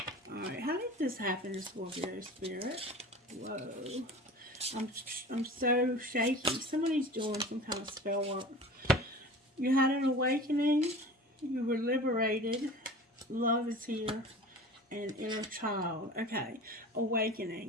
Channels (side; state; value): both; normal; correlation 0.38